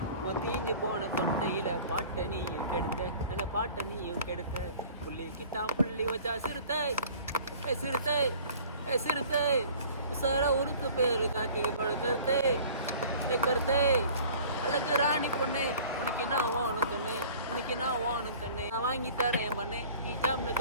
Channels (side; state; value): both; inverted; correlation -0.47